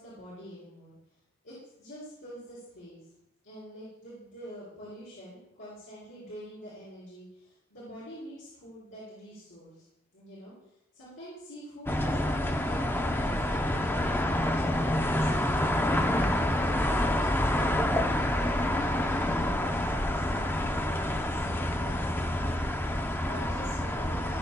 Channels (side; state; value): both; normal; correlation 0.78